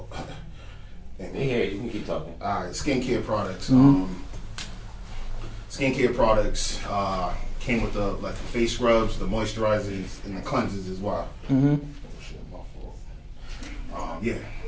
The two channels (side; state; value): both; identical; correlation 1.00